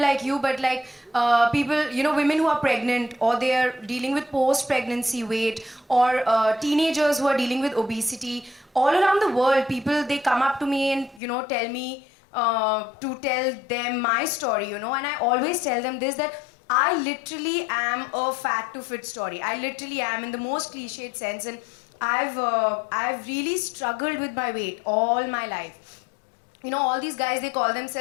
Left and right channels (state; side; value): drops out; right; at 11.2 s